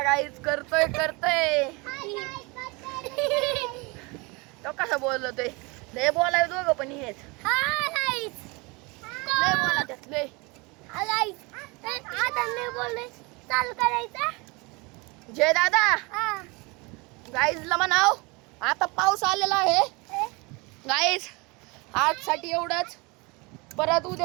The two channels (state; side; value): quieter; left; 27.0 dB